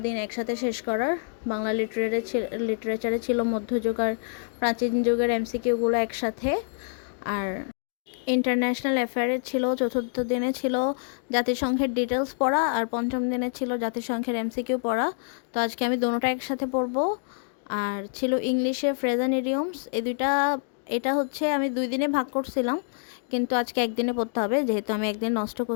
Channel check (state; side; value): silent; right; digital silence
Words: দিন একসাথে শেষ করার। বাংলা লিটারেচারে ছিল মধ্যযুগ আর প্রাচীন যুগের এমসিকিউগুলো একসাথে, আর ইন্টারন্যাশনাল অ্যাফেয়ারে ছিল চতুর্থ দিনে ছিল জাতিসংঘের ডিটেলস পড়া, আর পঞ্চম দিনে ছিল জাতিসংঘের এমসিকিউ পড়া। তো আজকে আমি দোনোটা একসাথে পড়বো। আর ছিল ইংলিশে ফ্রেজ অ্যান্ড ইডিয়মস, এই দুইটা। এটা হচ্ছে আমি 2 দিনে ভাগ করছিলাম, কিন্তু আজকে একদিনে পড়তে হবে যেহেতু আমি একদিন নষ্ট